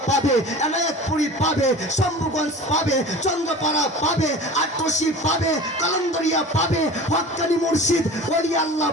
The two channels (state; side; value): normal; both; correlation 0.38